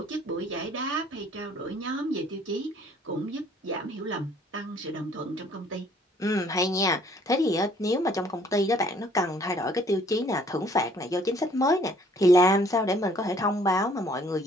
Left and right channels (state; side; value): normal; both; correlation 0.59